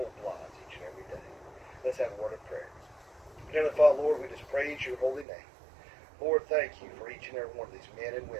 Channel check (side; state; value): left; drops out; at 5.2 s